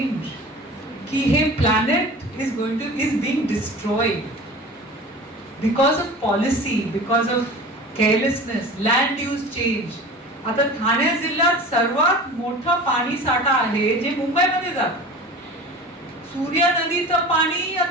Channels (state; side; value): normal; both; correlation 0.37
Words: की हे planet is being destroyed because of policy, because of carelessness, land use change. आता ठाणे जिल्ह्यात सर्वात मोठा पाणी साठा आहे जे मुंबईमध्ये जात. सूर्या नदीचं पाणी